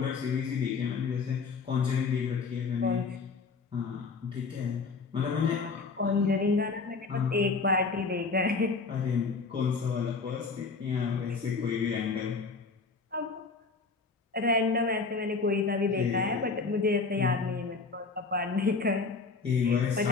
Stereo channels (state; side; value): quieter; right; 4.5 dB